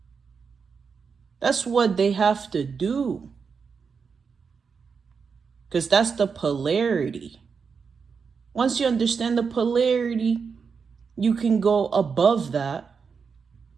That's what they have to do. Because that's the polarity. Once you understand the polarity, you can go above that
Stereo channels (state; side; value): quieter; left; 5.7 dB